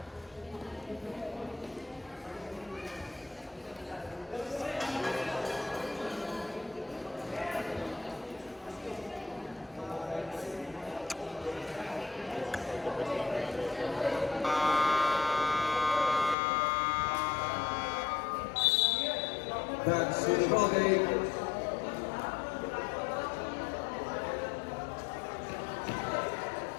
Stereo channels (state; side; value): drops out; right; at 16.4 s